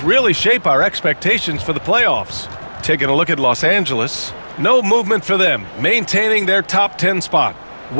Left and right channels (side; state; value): both; inverted; correlation -1.00